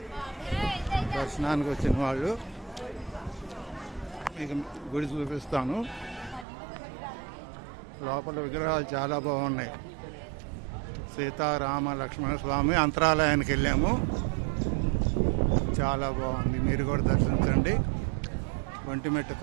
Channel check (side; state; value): left; drops out; at 6.5 s